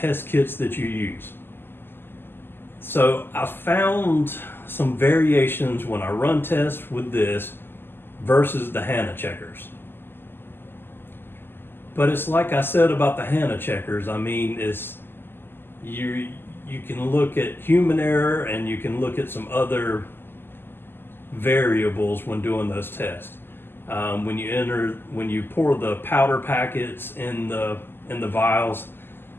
kits that you use. So I found some variations when I run tests with this versus the HANA checkers. But it's like I said about the HANA checkers. I mean, you can look at human error and you can look at some other variables when doing those tests. When you pour the powder packets in the vials,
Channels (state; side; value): late; right; 0.10 ms